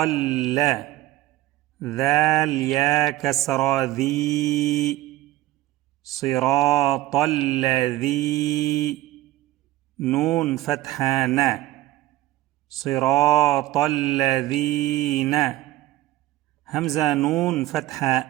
لا. ذال يا كسرى ذي، صراط الذي. نون فتحة نا، صراط الذين. همزة نون فتحة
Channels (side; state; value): left; quieter; 16.5 dB